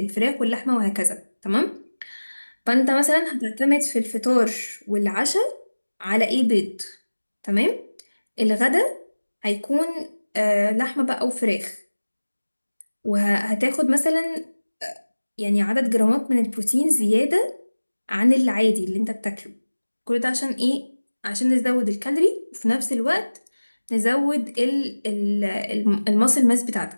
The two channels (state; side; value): inverted; both; correlation -1.00